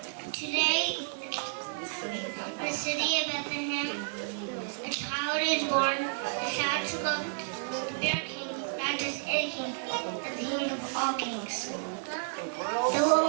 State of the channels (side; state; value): left; silent; 57 dB below the other